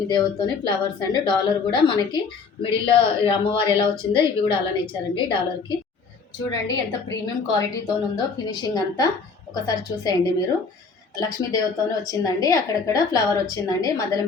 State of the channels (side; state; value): right; quieter; 5.0 dB